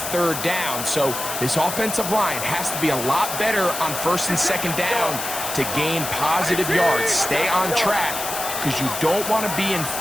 3rd down. So this offensive line has to be a lot better on 1st and 2nd down to gain positive yards. Stay on track because you don't want to be in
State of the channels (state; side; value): noise; left; hiss, 5 dB below the sound